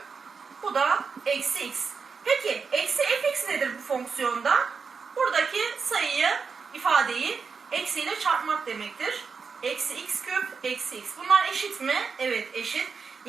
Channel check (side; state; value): left; quieter; 5.4 dB